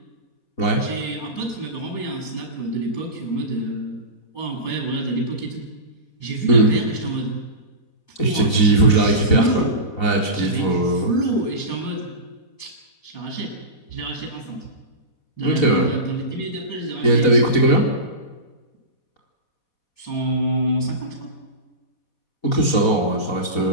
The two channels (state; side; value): late; right; 4.2 ms